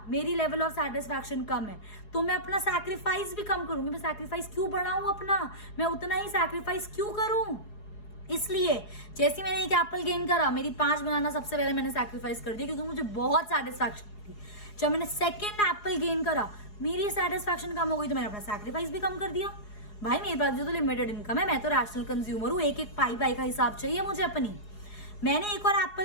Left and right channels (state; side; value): late; right; 4.8 ms